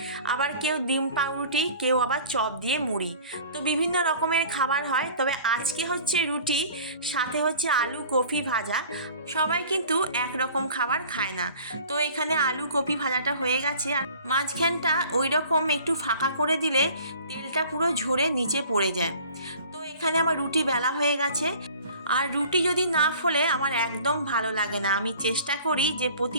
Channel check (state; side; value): inverted; both; correlation -0.47